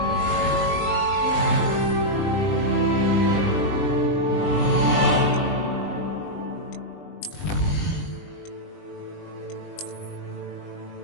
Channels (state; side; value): late; right; 20 ms